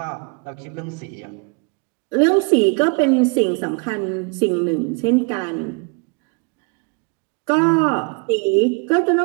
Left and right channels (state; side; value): quieter; left; 35.2 dB